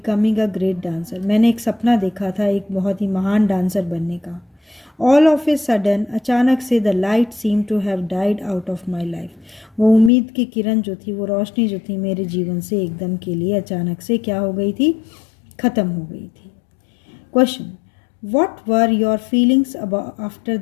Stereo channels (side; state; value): right; drops out; at 10.1 s